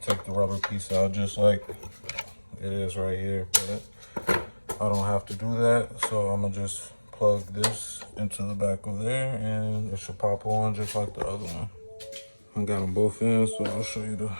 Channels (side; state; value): both; inverted; correlation -1.00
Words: take the rubber piece out just like it is right here, but I don't have to do that. So I'm gonna just plug this into the back of there and it should pop on just like the other one. I got them both in, so I'll show you the